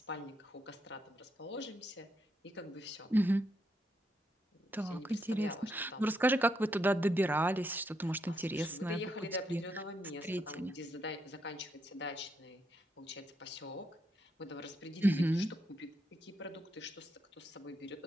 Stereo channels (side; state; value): both; normal; correlation 0.79